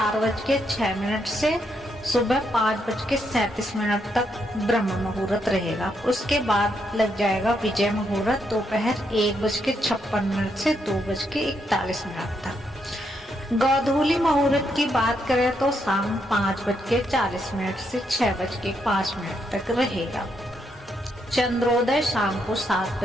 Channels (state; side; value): normal; both; correlation 0.78